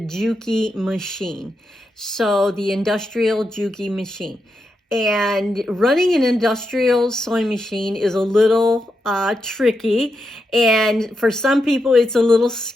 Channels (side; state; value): both; normal; correlation 0.85